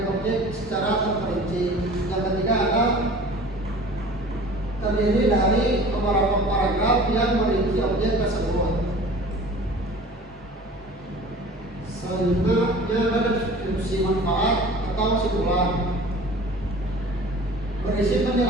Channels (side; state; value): both; normal; correlation 0.43